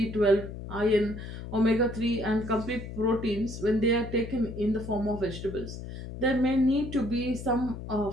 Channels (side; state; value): left; noise; hum, 10 dB below the sound